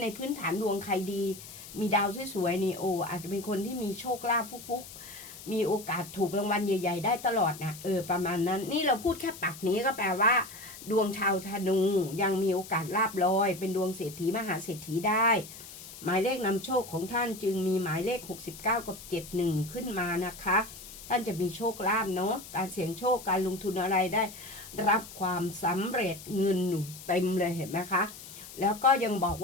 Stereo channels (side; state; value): left; noise; hiss, 15 dB below the sound